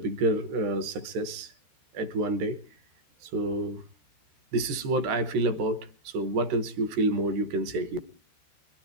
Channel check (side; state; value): left; late; 13 ms